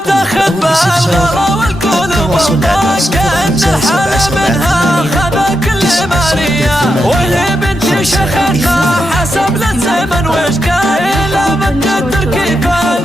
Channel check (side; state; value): both; normal; correlation 0.86